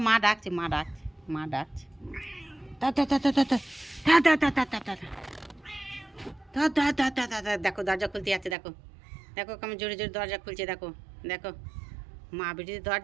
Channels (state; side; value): drops out; left; at 8.6 s